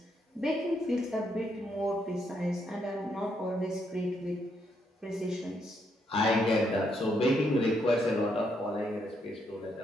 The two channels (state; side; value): normal; both; correlation 0.76